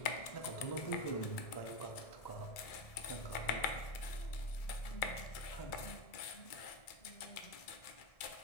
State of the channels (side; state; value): right; late; 1.7 ms